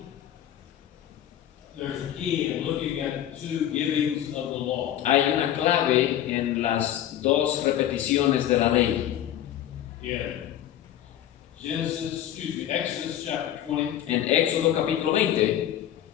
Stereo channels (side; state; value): right; quieter; 11.6 dB